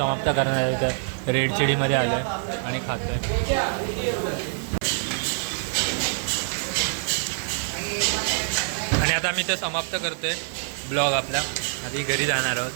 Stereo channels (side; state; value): left; silent; 62 dB below the other